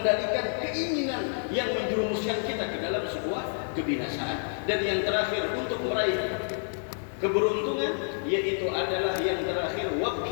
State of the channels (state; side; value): silent; right; digital silence